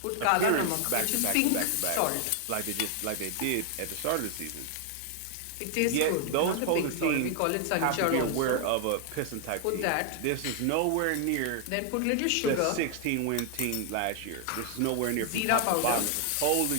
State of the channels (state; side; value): different; both; correlation 0.00